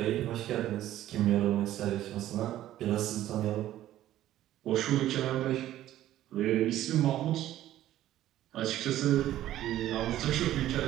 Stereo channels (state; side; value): quieter; left; 13.4 dB